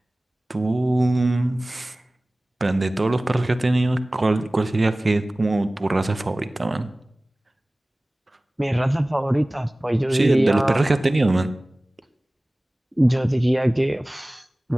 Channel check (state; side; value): normal; both; correlation 0.98